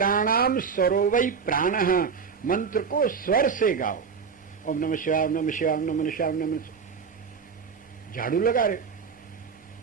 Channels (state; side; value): quieter; left; 5.9 dB